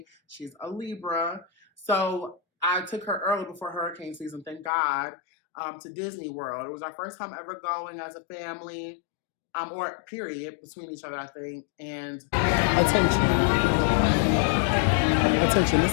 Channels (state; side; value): drops out; right; at 4.7 s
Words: She's a Libra. So I took her early before hurricane season, thank God, to Disney World. It was our first time ever going as a family, or period, between each other, I think. And attention, this